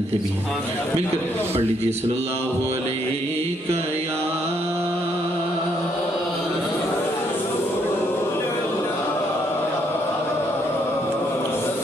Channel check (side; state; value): both; normal; correlation 0.72